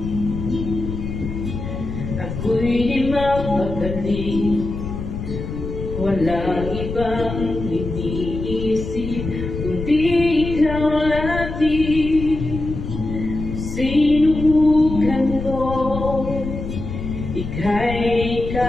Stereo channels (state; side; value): noise; left; rumble, 6 dB below the sound